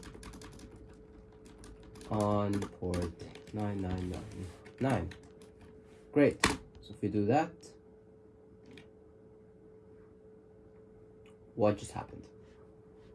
On port 9999. Great. So if we do that, what just happened?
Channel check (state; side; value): identical; both; correlation 1.00